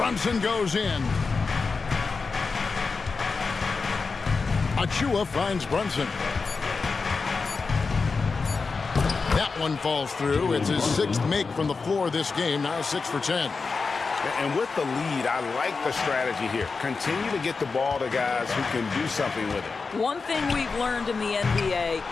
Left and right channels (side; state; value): right; quieter; 4.5 dB